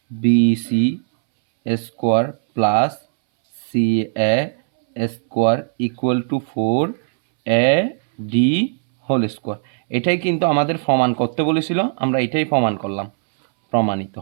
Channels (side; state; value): left; silent; 65 dB below the other